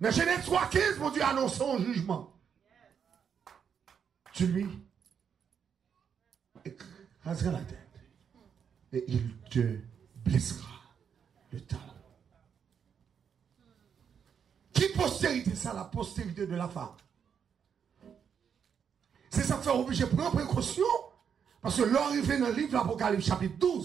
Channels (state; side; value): quieter; left; 7.4 dB